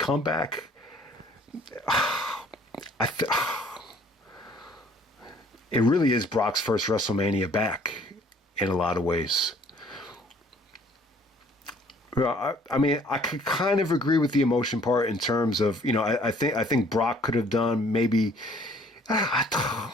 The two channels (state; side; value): normal; both; correlation 0.58